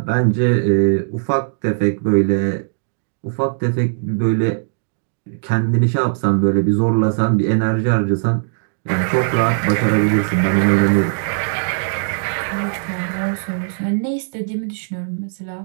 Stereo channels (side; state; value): left; silent; digital silence